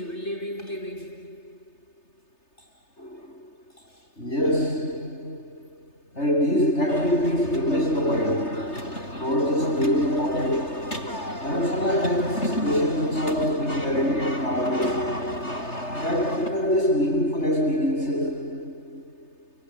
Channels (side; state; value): right; late; 3.3 ms